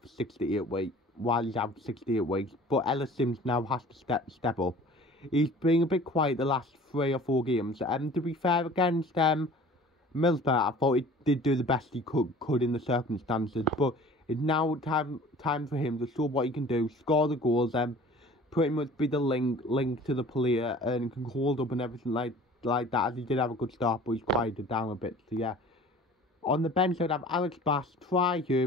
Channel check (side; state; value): both; normal; correlation 0.46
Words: for 68 weeks. But Ellis Sims now has to step up. He's been a bit quiet the last 3 or 4 games. To be fair, against Middlesbrough, I thought he did do the best he could in the circumstances. But it's now time for him to show what he can do, score the goals, pretty much be the link to the player, and can hold up and everything like that, as he did have a good start, but he's quieted down a bit, so yeah. On the bench, I'd have Alex Bass, Try